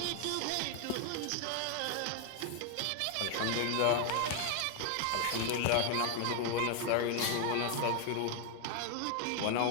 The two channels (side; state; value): both; different; correlation 0.00